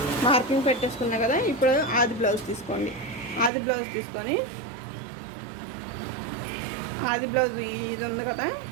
మార్కింగ్ పెట్టేసుకున్నా కదా. ఇప్పుడు ఆది బ్లౌజ్ తీసుకోండి. ఆది బ్లౌజ్ తీసుకొని ఆది బ్లౌజ్ ఇది ఉంది కదా,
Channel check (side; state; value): left; drops out; at 3.5 s